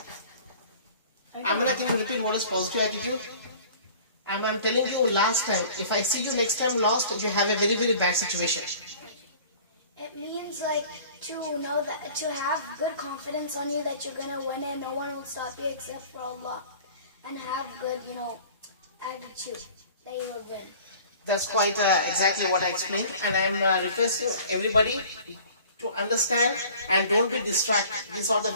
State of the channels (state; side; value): inverted; both; correlation -0.47